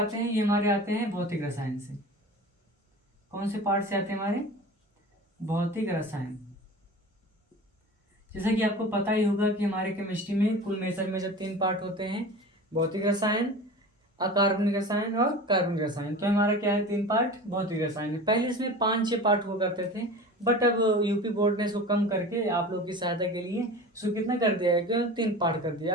हैं ये हमारे आते हैं भौतिक रसायन से। कौन से पार्ट से आते हैं हमारे? भौतिक रसायन। जैसा कि आपको पता ही होगा कि हमारे केमिस्ट्री में कुल मेजर में जब 3 पार्ट होते हैं, भौतिक रसायन, अकार्बनिक रसायन और कार्बनिक रसायन। तो हमारा क्या है, 3 पार्ट भौतिक रसायन है। पहले इसमें 5-6 पार्ट हुआ करते थे, बट अब यूपी बोर्ड ने इसको कम करके आप लोग की सहायता के लिए इसको कितना कर दिया है, क्यों 3 पार्ट कर दिया।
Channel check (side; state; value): both; normal; correlation 0.35